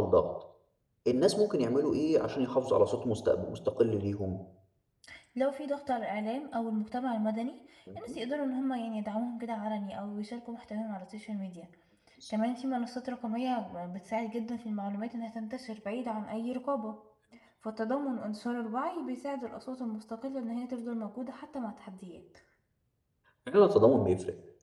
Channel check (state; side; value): identical; both; correlation 1.00